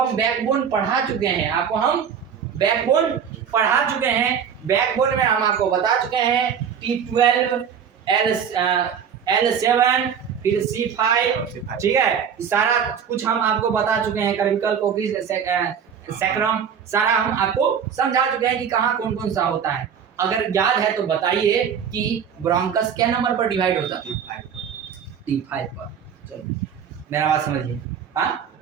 बैकबोन पढ़ा चुके हैं, आपको हम बैकबोन पढ़ा चुके हैं। बैकबोन में हम आपको बता चुके हैं T12, L7, फिर C5, ठीक है। सारा कुछ हम आपको बता चुके हैं, कर्विकल कोकिस सैक्रम, सारा हम आपको समझा चुके हैं कि कहाँ कौन कौन सा होता है। अगर याद है तो बताइए कि ब्रोंकस क्या नंबर पर डिवाइड होता है? T5 पर। चलो मेरा बात समझिए। हाँ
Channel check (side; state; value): left; quieter; 7.6 dB